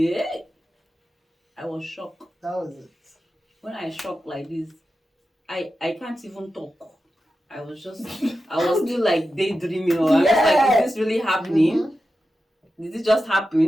I was shocked. That was it. When I shocked like this, I can't even talk. I was still like daydreaming. Or I was like, is this really happening? Did it just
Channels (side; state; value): both; normal; correlation 0.91